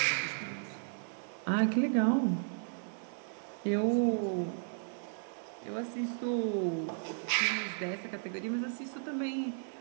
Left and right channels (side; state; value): left; silent; 55 dB below the other